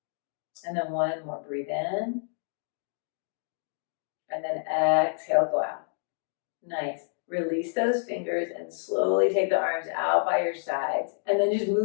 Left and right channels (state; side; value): silent; right; digital silence